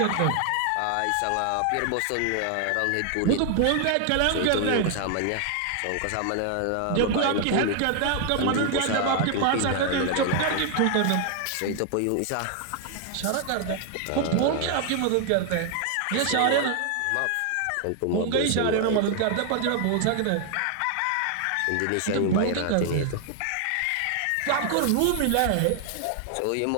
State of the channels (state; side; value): different; both; correlation 0.00